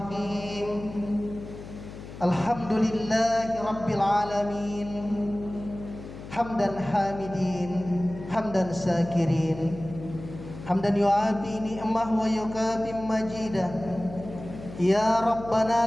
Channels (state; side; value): noise; left; hum, 13 dB below the sound